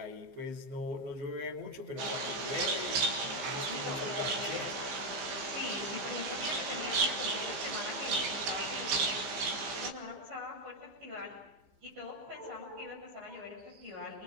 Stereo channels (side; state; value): left; late; 15 ms